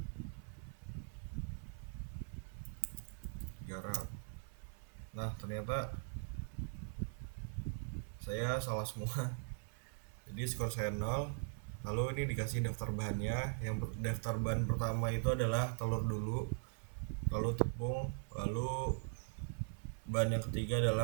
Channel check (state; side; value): silent; left; 50 dB below the other